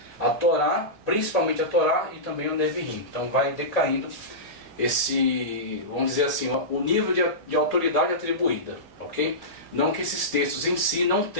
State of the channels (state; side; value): late; right; 1.8 ms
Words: à Torá, principalmente a Torá e também o Neviim. Então vai decaindo esse, vamos dizer assim, o nível de autoridade atribuída, ok? Não que esses textos em si não